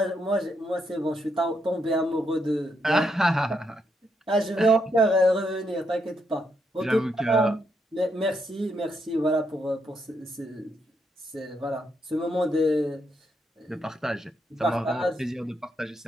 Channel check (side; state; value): both; normal; correlation 0.78